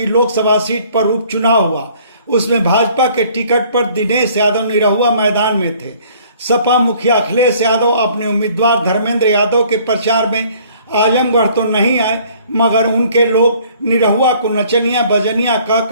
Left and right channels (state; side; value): inverted; both; correlation -0.57